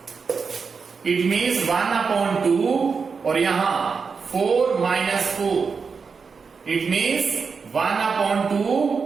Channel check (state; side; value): quieter; left; 5.3 dB